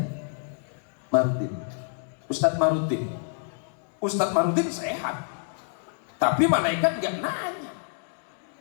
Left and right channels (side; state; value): right; silent; digital silence